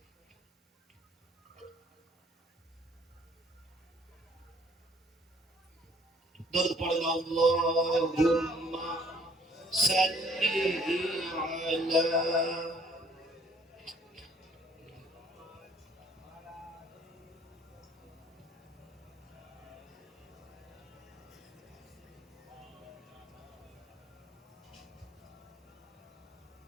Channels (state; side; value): normal; both; correlation 0.60